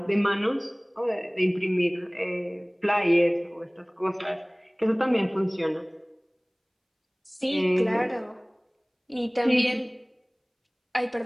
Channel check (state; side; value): identical; both; correlation 1.00